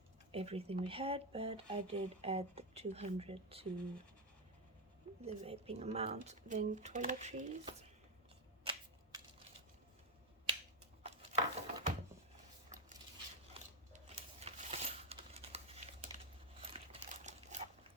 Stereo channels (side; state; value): both; normal; correlation 0.06